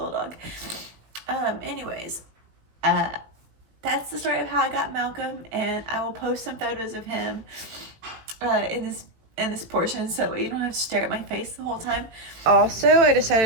dog. Anyways, that's the story of how I got Malcolm, and I will post some photos of him in this portion, so you don't have to stare at my face the whole time. Also, I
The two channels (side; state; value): left; late; 18 ms